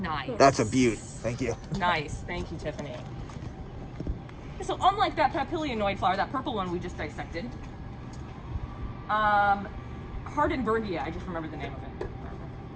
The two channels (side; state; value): both; identical; correlation 1.00